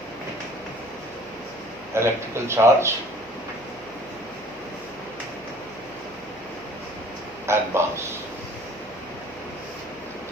Electrical charge and mass.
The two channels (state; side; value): normal; both; correlation 0.52